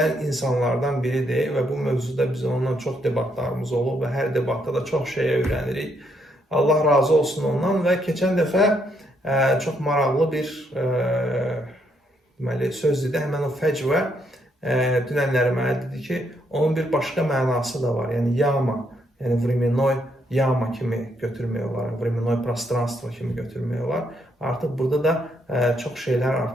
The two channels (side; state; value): both; normal; correlation 0.74